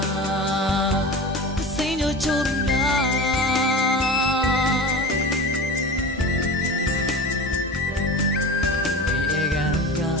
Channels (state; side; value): normal; both; correlation 0.32